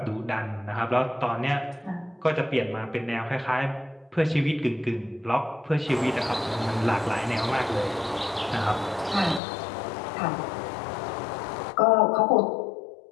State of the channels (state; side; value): drops out; right; at 9.4 s